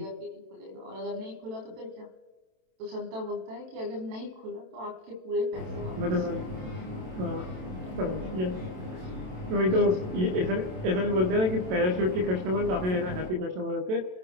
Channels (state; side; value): late; left; 27 ms